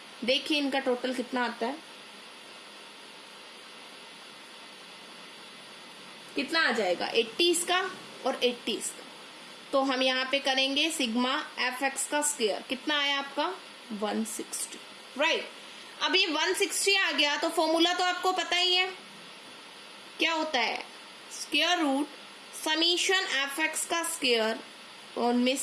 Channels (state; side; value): identical; both; correlation 1.00